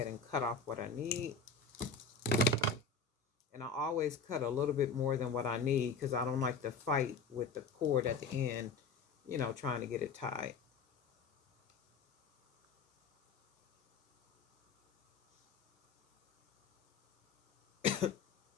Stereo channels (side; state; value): right; quieter; 4.8 dB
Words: and cut off what I need. And I always cut a little bit more than what I need because I don't like to fight with the cord at the end, you know, trying to get it tied.